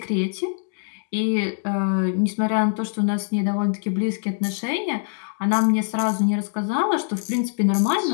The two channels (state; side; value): silent; right; digital silence